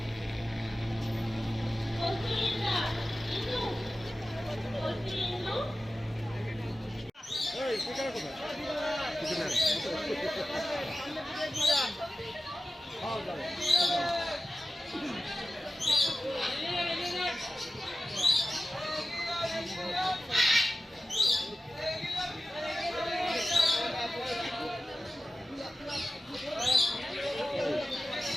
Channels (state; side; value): normal; both; correlation 0.94